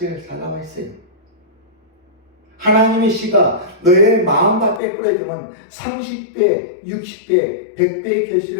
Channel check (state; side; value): drops out; right; at 4.8 s